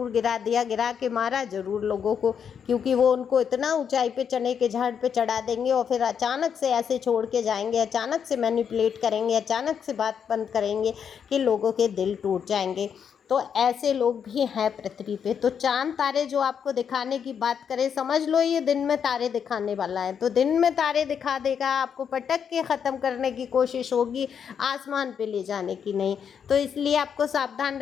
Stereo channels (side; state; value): right; quieter; 7.5 dB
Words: गिरा दिया, गिरा के मारा ज़रूर लोगों को, क्योंकि वो उनको इतना ऊंचाई पे चने के झाड़ पे चढ़ा देंगे और फिर अचानक से ऐसे छोड़ के जाएंगे, अचानक से मैनिपुलेट करेंगे, अचानक से बात बंद करेंगे कि लोगों के दिल टूट जाएंगे। तो ऐसे लोग भी हैं पृथ्वी पे। तो चांद तारे जो आपको दिखाने की बात करें, समझ लो ये दिन में तारे दिखाने वाला है, तो दिन में तारे दिखा देगा, आपको पटक के ख़त्म करने की कोशिश होगी, आसमान पे ले जाने की नहीं। तो इसलिए आपको सावधान